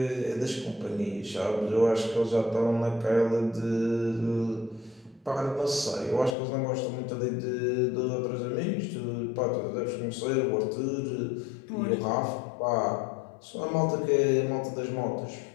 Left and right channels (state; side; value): drops out; right; at 6.4 s